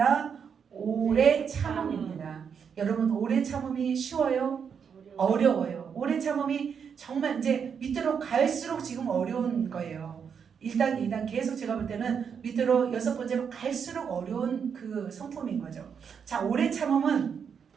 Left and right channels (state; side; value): quieter; left; 7.0 dB